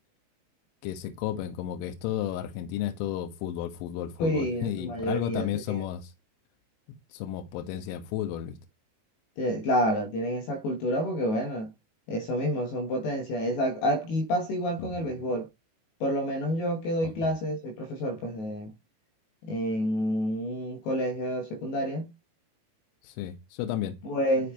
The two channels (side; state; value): right; late; 18 ms